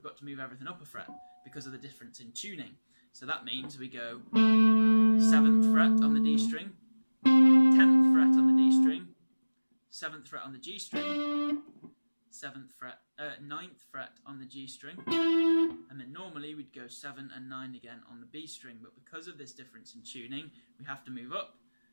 got to move everything up a fret because of the difference in tuning. So that means we go 7th fret on the D string, 10th fret on the D string, 7th fret on the G string, 9th fret on the G string, and then normally we'd go 7 and 9 again on the B string, but because of this difference in tuning, we have to move up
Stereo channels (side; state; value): both; inverted; correlation -1.00